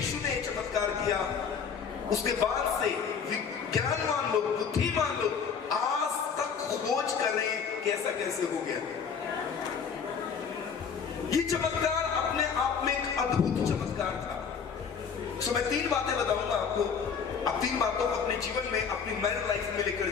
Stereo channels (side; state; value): right; quieter; 6.4 dB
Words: ने चमत्कार किया उसके बाद से विज्ञानवान लोग, बुद्धिमान लोग आज तक खोज कर रहे हैं कि ऐसा कैसे हो गया। ये चमत्कार अपने आप में एक अद्भुत चमत्कार था। सो मैं 3 बातें बताऊंगा आपको, आप 3 बातों को अपने जीवन में, अपनी मैरिड लाइफ में लेकर